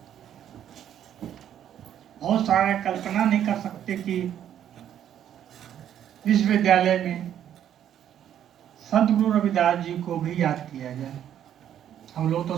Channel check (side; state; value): left; quieter; 10.2 dB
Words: बहुत सारे कल्पना नहीं कर सकते कि विश्वविद्यालय में संत गुरु रविदास जी को भी याद किया जाए। हम लोग तो